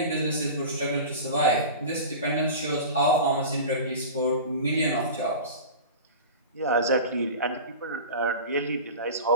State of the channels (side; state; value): both; inverted; correlation -0.33